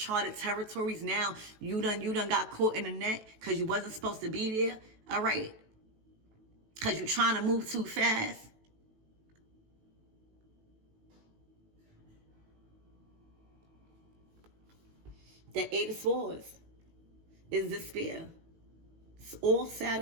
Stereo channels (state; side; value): late; left; 18 ms